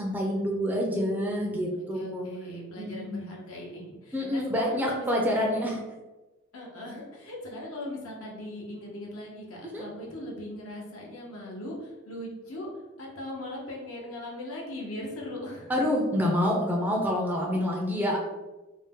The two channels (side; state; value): both; normal; correlation 0.51